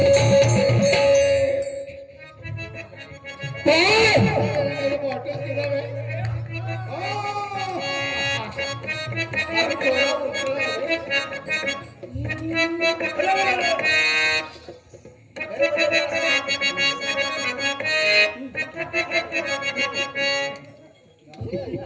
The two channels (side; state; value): both; identical; correlation 1.00